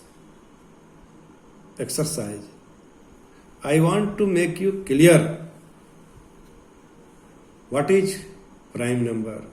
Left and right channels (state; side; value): identical; both; correlation 1.00